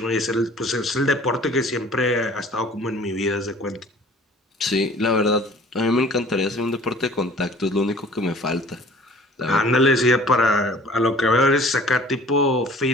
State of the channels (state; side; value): normal; both; correlation 0.49